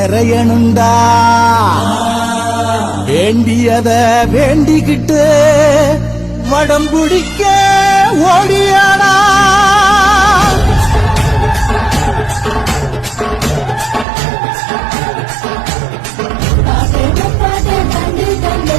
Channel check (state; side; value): drops out; left; at 14.1 s